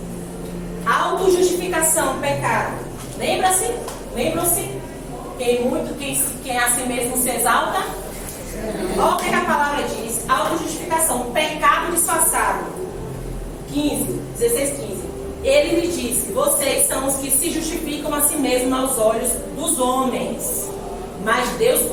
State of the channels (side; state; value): both; identical; correlation 1.00